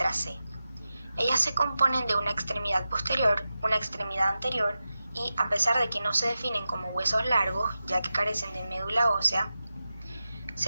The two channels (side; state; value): both; inverted; correlation -0.92